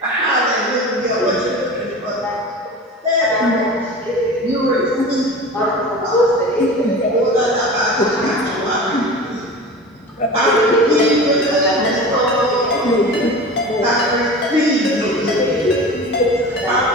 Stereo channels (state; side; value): normal; both; correlation 0.35